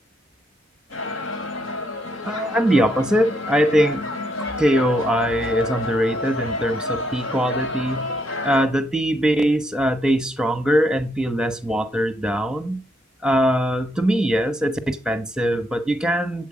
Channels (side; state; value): both; normal; correlation 0.76